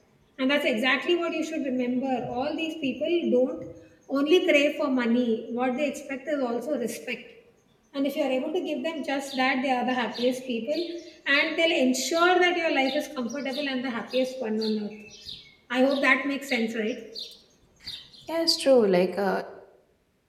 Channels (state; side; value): identical; both; correlation 1.00